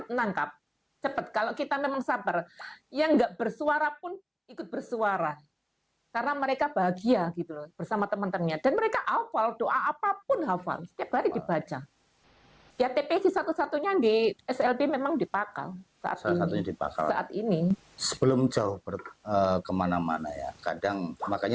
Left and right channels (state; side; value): identical; both; correlation 1.00